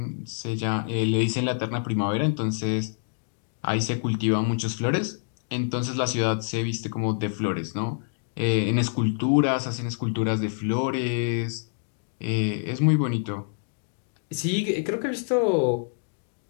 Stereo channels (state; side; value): silent; right; digital silence